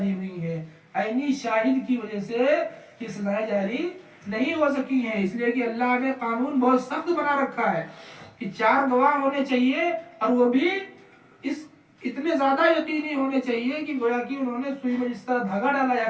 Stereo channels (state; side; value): identical; both; correlation 1.00